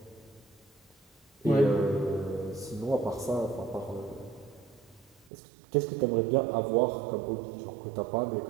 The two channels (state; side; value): drops out; left; at 5.3 s